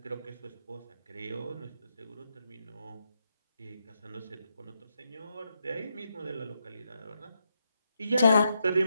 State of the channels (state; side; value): inverted; both; correlation -0.82